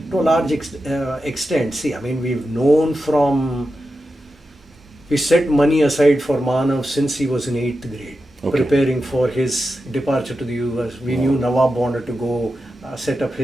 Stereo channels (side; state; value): both; normal; correlation 0.90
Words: to a large extent. See, I mean, we set money aside for Manav since he was in 8th grade. Okay. Preparing for his departure to the US. We knew Nawab wanted to go set up